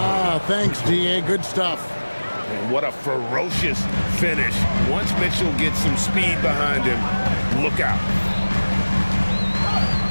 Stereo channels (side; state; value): both; inverted; correlation -1.00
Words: Thanks, D.A. Good stuff. And what a ferocious finish. Once Mitchell gets some speed behind him, look out.